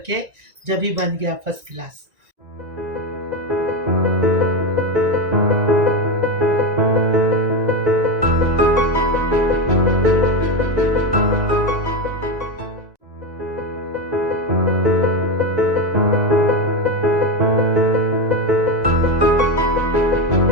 जब भी बन गया फर्स्ट क्लास।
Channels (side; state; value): left; late; 1.9 ms